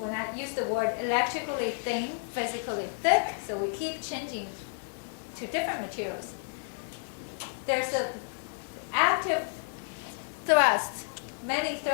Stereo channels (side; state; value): right; silent; 57 dB below the other